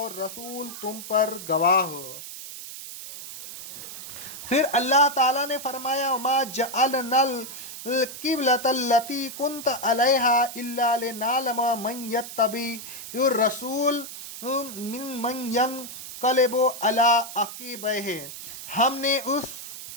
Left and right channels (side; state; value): right; noise; hiss, 11 dB below the sound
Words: رسول تم پر گواہ ہو۔ پھر اللہ تعالیٰ نے فرمایا، وَمَا جَعَلْنَا القبلۃ التی کنت علیہا الا لنعلم من یتبع الرسول من ینقلب علی عقبیہ، ہم نے اس